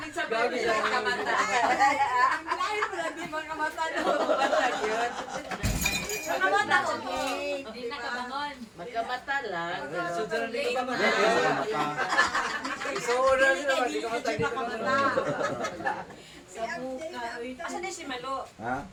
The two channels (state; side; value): identical; both; correlation 1.00